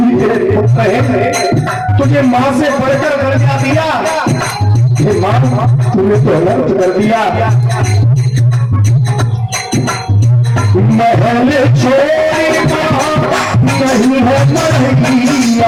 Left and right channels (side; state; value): both; identical; correlation 1.00